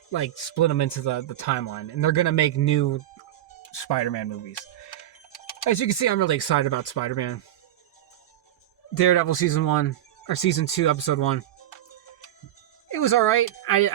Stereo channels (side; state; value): left; quieter; 12.6 dB